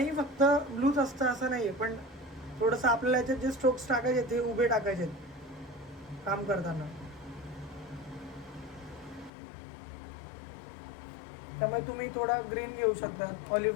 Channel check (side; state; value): right; drops out; at 9.3 s